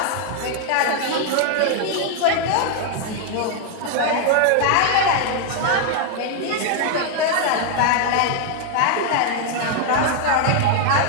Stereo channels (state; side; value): different; both; correlation 0.00